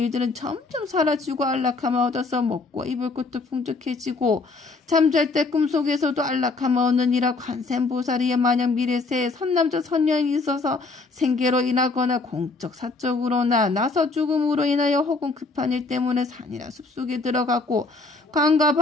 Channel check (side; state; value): right; quieter; 3.7 dB